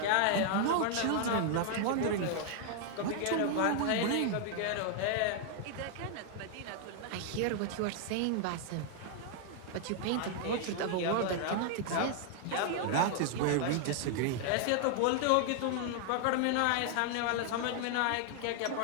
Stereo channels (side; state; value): both; different; correlation 0.00